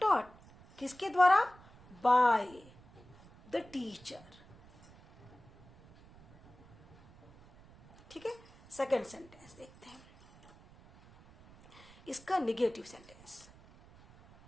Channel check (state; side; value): noise; right; rumble, 24 dB below the sound